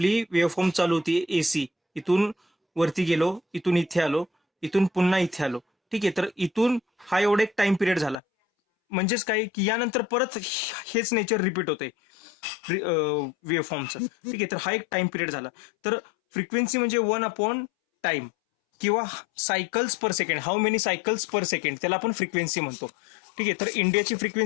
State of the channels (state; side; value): drops out; right; at 8.2 s